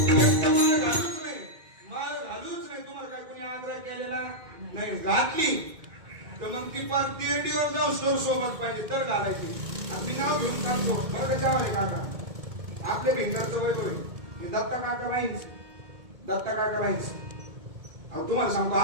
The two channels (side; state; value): left; late; 2.2 ms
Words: माल घालूच नाही. तुम्हाला काय कोणी आग्रह केलेला नाही. घातली तर मग ती पार तिरडीवर जाऊन स्टोर सोबत पाहिजे तर घालायची. मी नाव घेऊन सांगतो बरं त्याच्यावर काका आपल्या भिंगरचं वय होईल. दत्ता काका नाहीच. दत्ता काका नाहीच. तुम्हाला सांगतो